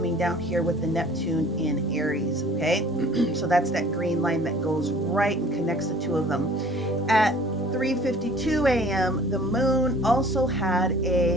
down here with the Neptune in Aries, okay? So that's that green line that goes right and connects the two of them. At 3:52 a.m., the moon also had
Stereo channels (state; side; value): normal; both; correlation 0.50